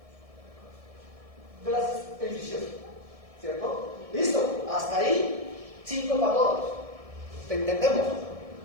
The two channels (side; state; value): left; late; 1.7 ms